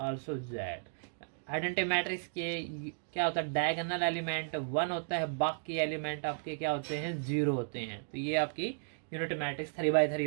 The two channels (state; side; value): silent; left; digital silence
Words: z। Identity matrix के क्या होता है, डायगोनल एलिमेंट 1 होता है, बाकी एलिमेंट आपके क्या होते हैं, 0 होते हैं। तो ये आपकी यूनिट मैट्रिक्स 3x3